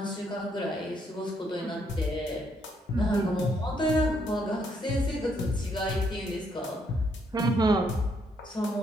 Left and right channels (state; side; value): normal; both; correlation 0.73